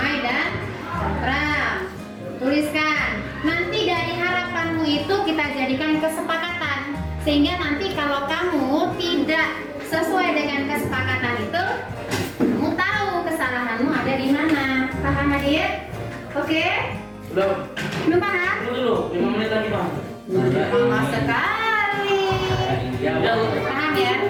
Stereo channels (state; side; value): identical; both; correlation 1.00